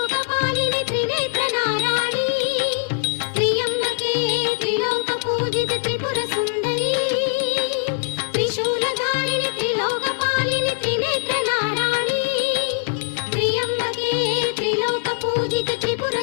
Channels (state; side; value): silent; right; 64 dB below the other